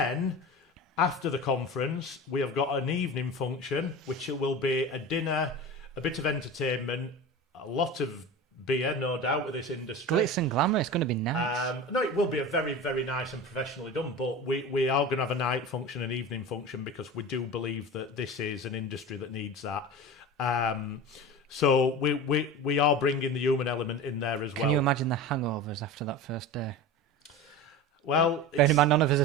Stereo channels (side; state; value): both; normal; correlation 0.30